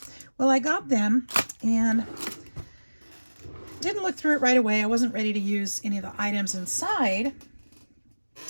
Well, I got them and didn't look through it right away. I wasn't ready to use any of the items inside.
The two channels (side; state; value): both; inverted; correlation -1.00